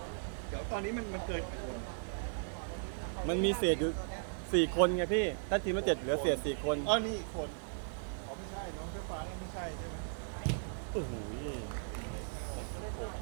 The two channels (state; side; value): silent; left; 53 dB below the other